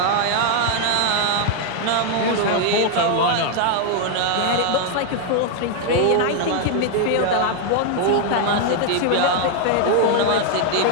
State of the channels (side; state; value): both; different; correlation 0.00